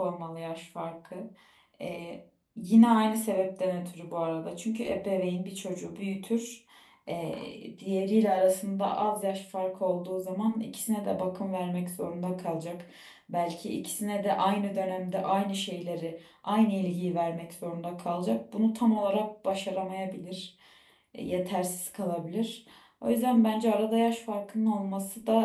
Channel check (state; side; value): identical; both; correlation 1.00